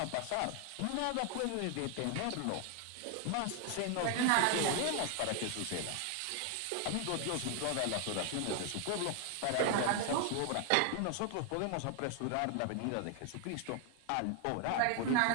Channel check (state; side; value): different; both; correlation 0.00